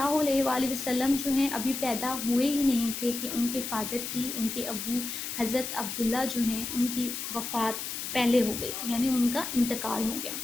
علیہ وآلہ وسلم جو ہیں ابھی پیدا ہوئے ہی نہیں تھے کہ ان کے فادر کی، ان کے ابو حضرت عبداللہ جو ہیں ان کی وفات پہلے ہو گئی، یعنی ان کا انتقال ہو گیا۔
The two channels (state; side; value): noise; left; hiss, 5 dB below the sound